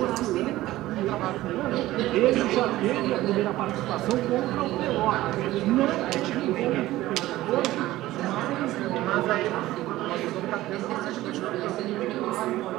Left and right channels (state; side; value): quieter; left; 16.3 dB